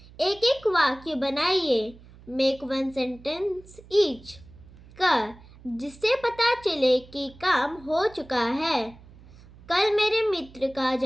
एक एक वाक्य बनाइए। Make 1 sentence each. जिससे पता चले कि काम हो चुका है। कल मेरे मित्र का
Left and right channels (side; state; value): right; noise; hum, 22 dB below the sound